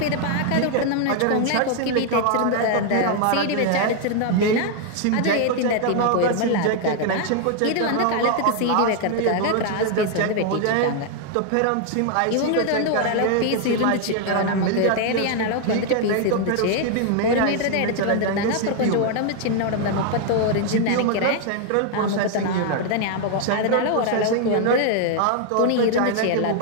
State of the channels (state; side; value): different; both; correlation 0.00